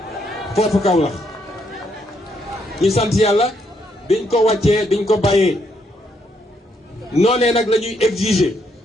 foofu Kaolack ñu sant yàlla biñ ko wàccee biñ ko bàyyee noonee nag la ñuy exiger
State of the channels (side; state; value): both; normal; correlation 0.74